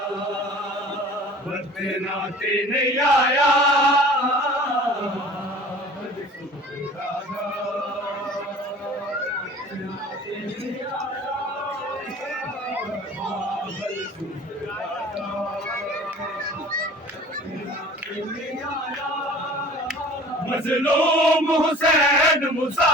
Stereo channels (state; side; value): normal; both; correlation 0.45